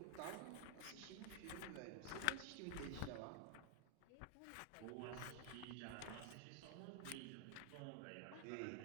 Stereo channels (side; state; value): both; different; correlation 0.00